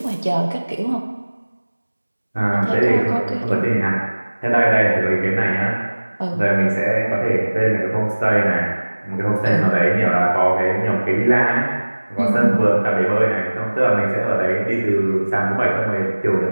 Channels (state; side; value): inverted; both; correlation -1.00